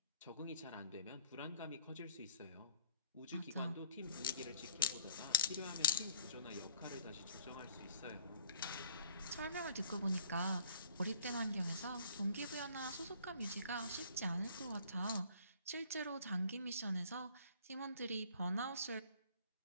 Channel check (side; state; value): both; inverted; correlation -0.55